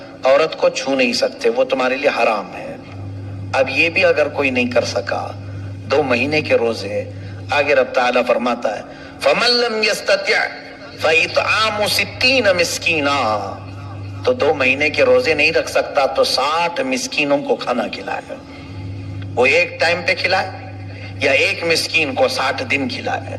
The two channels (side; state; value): both; identical; correlation 1.00